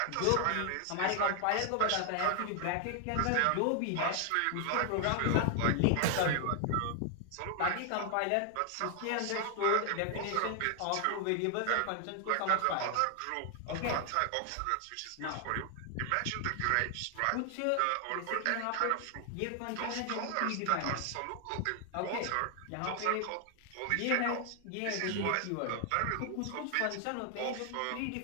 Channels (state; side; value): different; both; correlation 0.00